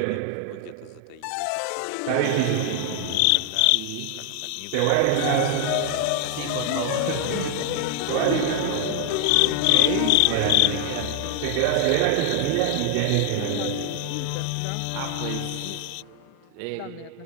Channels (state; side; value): different; both; correlation 0.00